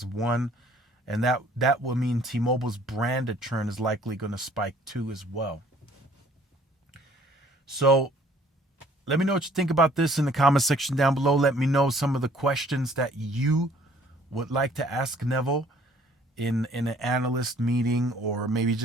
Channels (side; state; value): both; normal; correlation 0.58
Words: one. And that will mean T-Mobile's branded churn is likely going to spike too as well. So let me know what you think about this in the comment section down below. Let me know some of the questions that you would like to ask Neville in an analyst meeting, or maybe